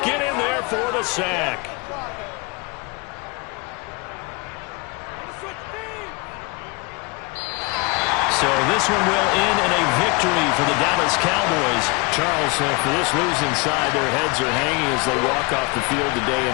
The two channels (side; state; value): right; quieter; 29.1 dB